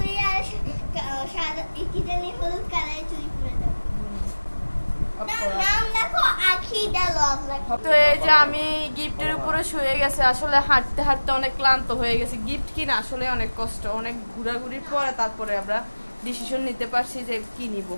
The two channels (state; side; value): inverted; both; correlation -1.00